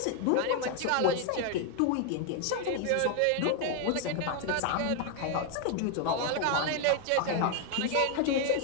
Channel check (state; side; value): different; both; correlation 0.01